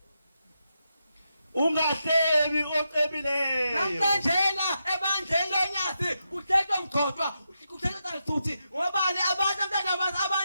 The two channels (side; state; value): both; inverted; correlation -0.85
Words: Ungahlebi ocebileyo. Namhlanje ebandleni lonyasi kuthethwa mgqoqwa kuthethwa futhi ngobani abantu